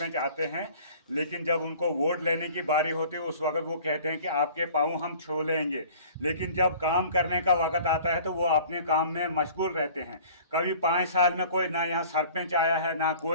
आते हैं, लेकिन जब उनको वोट लेने की बारी होती है उस वक्त वो कहते हैं कि आपके पाँव हम छू लेंगे, लेकिन जब काम करने का वक्त आता है तो वो अपने काम में मशगूल रहते हैं। कभी 5 साल में कोई ना यहाँ सरपंच आया है ना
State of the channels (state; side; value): inverted; both; correlation -0.48